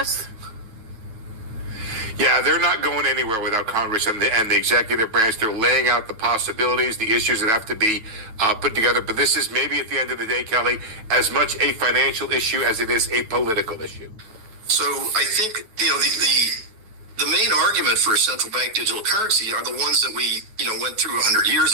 Yeah, they're not going anywhere without Congress and the executive branch. They're laying out the possibilities, the issues that have to be put together. But this is maybe at the end of the day, Kelly, as much a financial issue as it is a political issue. So I think, the main argument for a central bank digital currency are the ones that we, went through 100 years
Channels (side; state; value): left; late; 9.2 ms